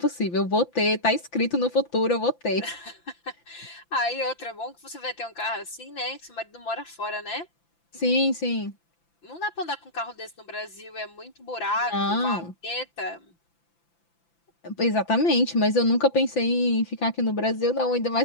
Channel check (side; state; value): right; late; 5.9 ms